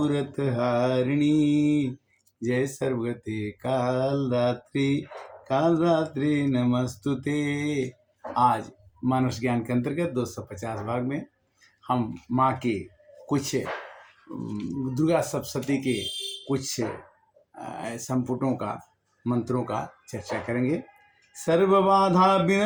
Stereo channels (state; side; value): identical; both; correlation 1.00